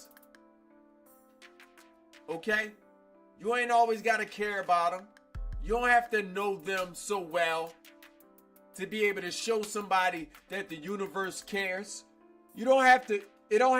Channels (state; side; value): identical; both; correlation 1.00